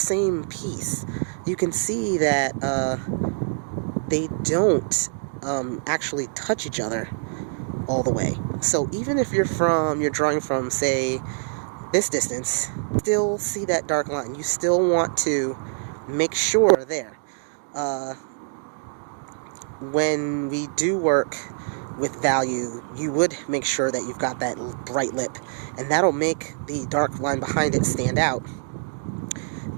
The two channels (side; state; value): left; silent; digital silence